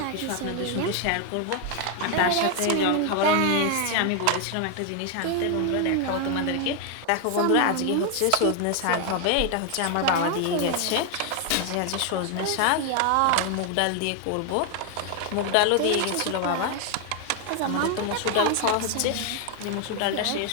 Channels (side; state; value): both; different; correlation 0.01